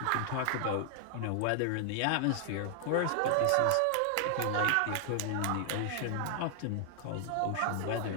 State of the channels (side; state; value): both; different; correlation 0.00